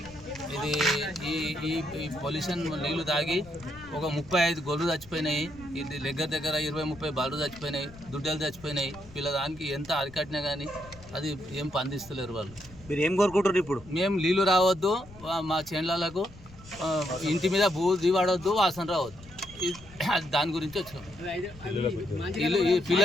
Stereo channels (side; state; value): left; noise; rumble, 20 dB below the sound